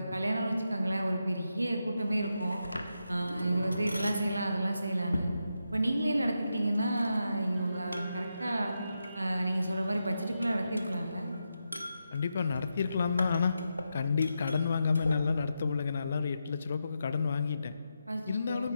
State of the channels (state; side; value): inverted; both; correlation -0.86